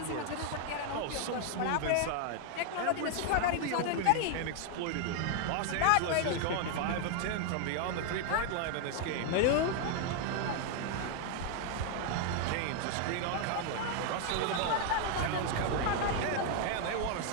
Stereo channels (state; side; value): different; both; correlation 0.00